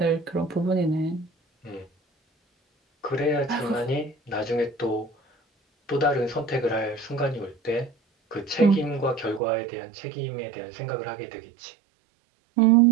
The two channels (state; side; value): drops out; left; at 9.4 s